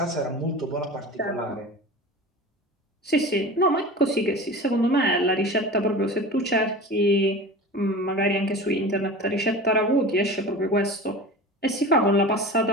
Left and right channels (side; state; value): both; normal; correlation 0.34